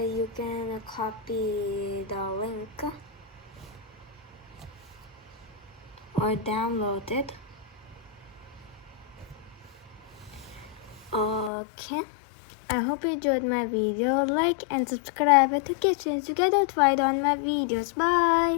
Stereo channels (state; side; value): drops out; right; at 11.5 s